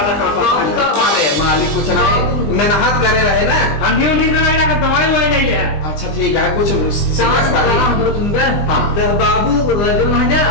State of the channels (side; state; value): right; late; 20 ms